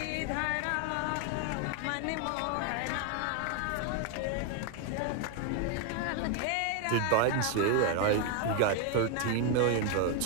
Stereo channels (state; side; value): different; both; correlation 0.01